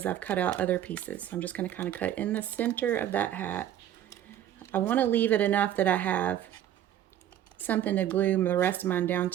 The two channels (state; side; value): quieter; left; 11.3 dB